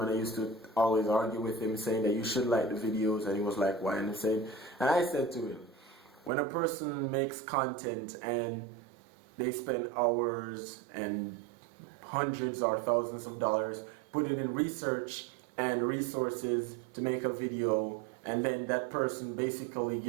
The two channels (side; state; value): left; drops out; at 6.3 s